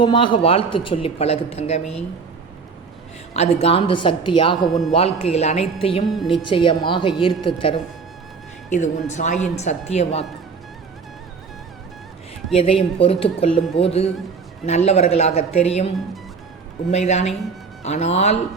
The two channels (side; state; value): left; quieter; 5.1 dB